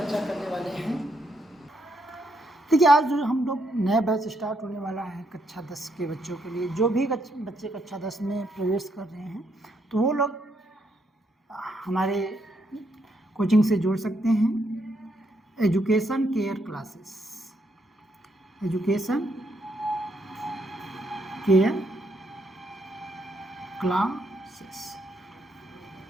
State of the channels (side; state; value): both; normal; correlation 0.76